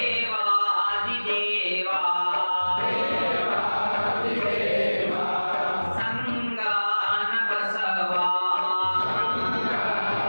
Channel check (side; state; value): both; inverted; correlation -1.00